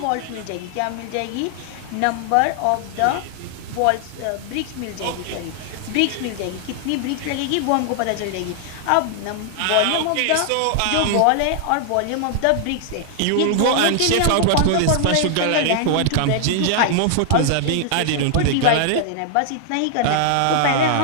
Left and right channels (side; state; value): both; different; correlation 0.00